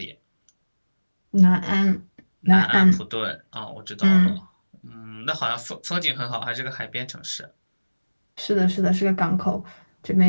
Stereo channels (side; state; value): both; inverted; correlation -1.00